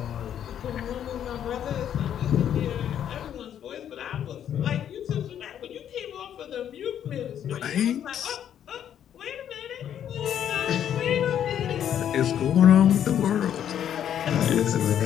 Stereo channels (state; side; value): quieter; right; 9.8 dB